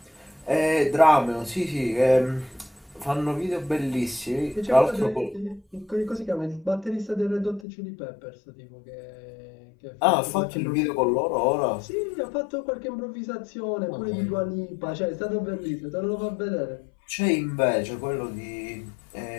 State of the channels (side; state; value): right; drops out; at 7.7 s